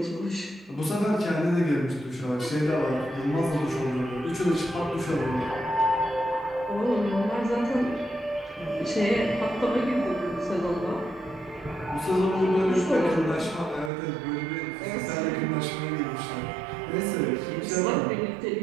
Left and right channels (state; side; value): drops out; left; at 13.9 s